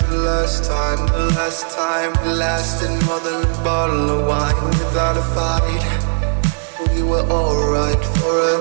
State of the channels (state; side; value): silent; left; digital silence